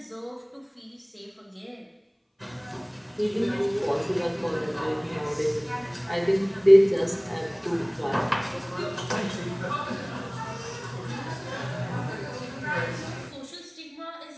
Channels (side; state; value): both; identical; correlation 1.00